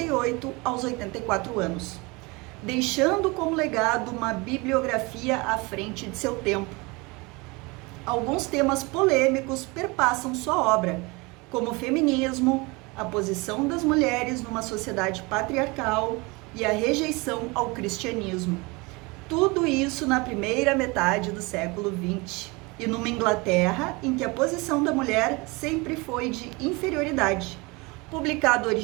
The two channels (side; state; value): left; quieter; 25.9 dB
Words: aos 84 anos, deixando como legado uma bibliografia à frente de seu tempo. Alguns temas polêmicos perpassam sua obra, como o feminismo, a posição das mulheres numa sociedade patriarcal e a rejeição ao cristianismo. Tudo isso na primeira metade do século XX, e numa Inglaterra em que a posição da mulher sempre foi de inferioridade. Publicado